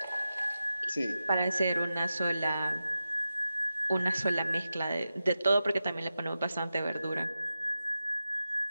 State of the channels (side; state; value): both; inverted; correlation -0.92